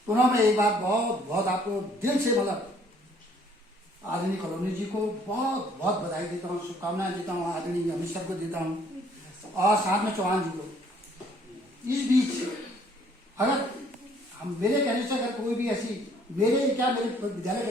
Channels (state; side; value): normal; both; correlation 0.61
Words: मैं एक बार बहुत आपको दिल से मतलब आदरणीय कॉलोनी जी को बहुत बधाई देता हूँ, शुभकामनाएं देता हूँ, आदरणीय अमित सर को देता हूँ, और साथ में चौहान जी को। इस बीच अगर हम मेरे कहने से अगर कोई भी ऐसी मेरे विद्यालय